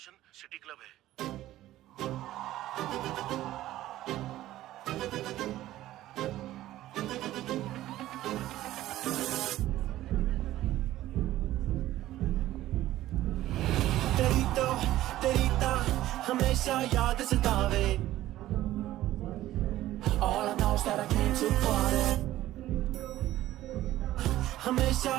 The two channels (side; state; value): left; quieter; 14.7 dB